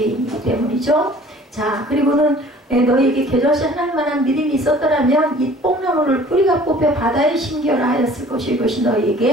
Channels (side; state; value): both; normal; correlation 0.50